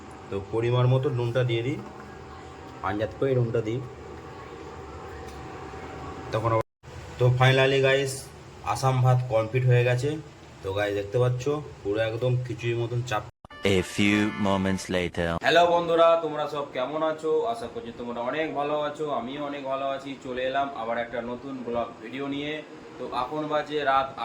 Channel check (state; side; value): identical; both; correlation 1.00